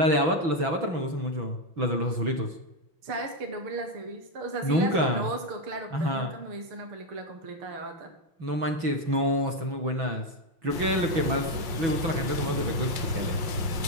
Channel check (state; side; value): late; left; 6.1 ms